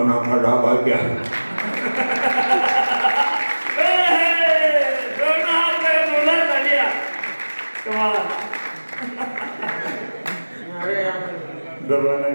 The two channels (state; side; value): inverted; both; correlation -1.00